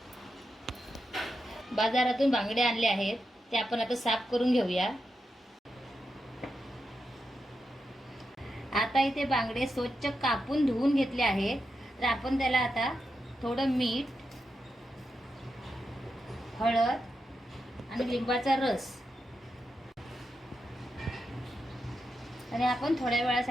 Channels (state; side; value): normal; both; correlation 0.87